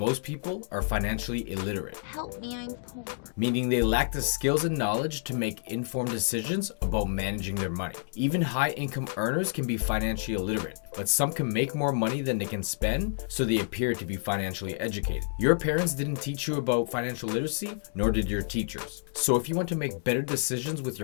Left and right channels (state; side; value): silent; right; digital silence